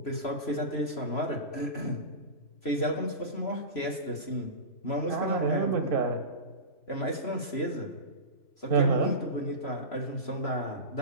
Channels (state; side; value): late; right; 3.0 ms